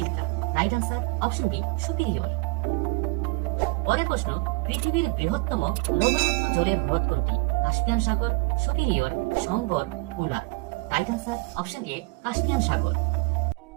Right answer option B, Superior. পরের প্রশ্ন, পৃথিবীর বৃহত্তম লবণাক্ত জলের হ্রদ কোনটি? কাস্পিয়ান সাগর, Superior, Sambhar, Wular. Right answer option A, Caspian সাগর।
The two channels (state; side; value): quieter; left; 24.3 dB